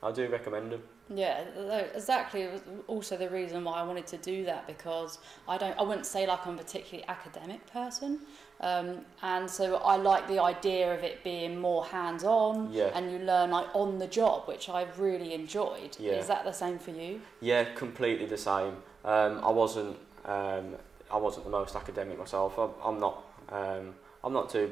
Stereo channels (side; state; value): left; quieter; 5.2 dB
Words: I do recommend them. Yeah, exactly. It was also the reason why I wanted to do that, because I wouldn't say like I'm a particularly academic person, and so I like the idea of it being more hands-on, and you learn like on the job, which I've really enjoyed. Yeah. Is that the same for you? Yeah, completely the same. I wasn't the most academic myself. I'm not too